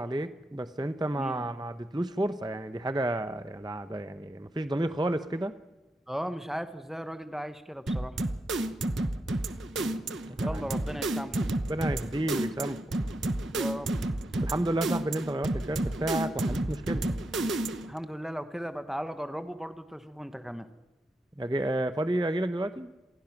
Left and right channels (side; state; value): both; normal; correlation 0.84